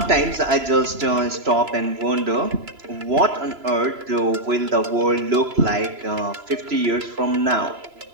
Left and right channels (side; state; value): left; late; 3.0 ms